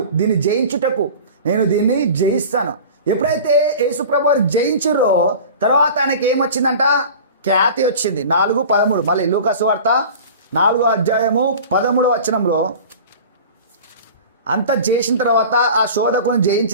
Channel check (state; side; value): inverted; both; correlation -0.38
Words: దీన్ని జయించుటకు నేను దీన్ని జయిస్తాను. ఎప్పుడైతే యేసుప్రభు వారు జయించురో తర్వాత ఆయనకి ఏమొచ్చిందంట? ఖ్యాతి వచ్చింది. 4:13 మళ్ళీ లూకా సువార్త 4:13 అంతా చేసిన తర్వాత, ఆ శోధకుని